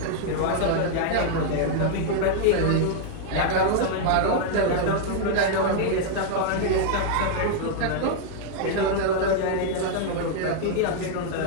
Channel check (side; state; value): both; different; correlation -0.01